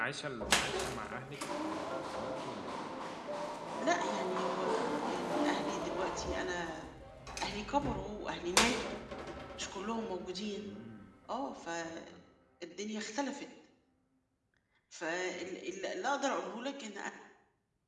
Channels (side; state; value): both; identical; correlation 1.00